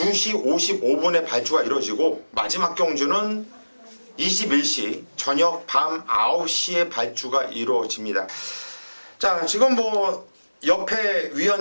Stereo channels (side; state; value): both; inverted; correlation -1.00